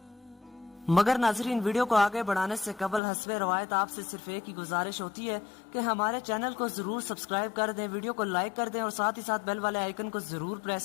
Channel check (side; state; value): right; drops out; at 3.0 s